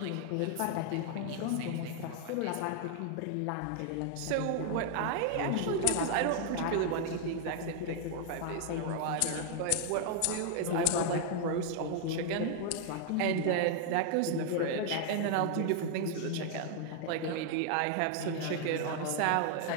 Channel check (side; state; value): both; different; correlation 0.00